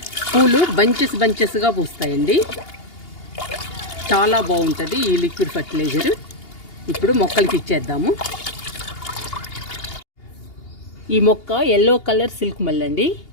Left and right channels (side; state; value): right; late; 2.8 ms